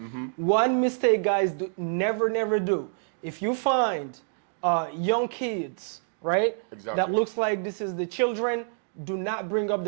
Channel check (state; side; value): silent; left; digital silence